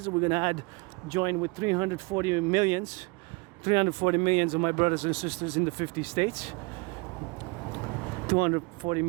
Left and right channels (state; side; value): quieter; left; 29.1 dB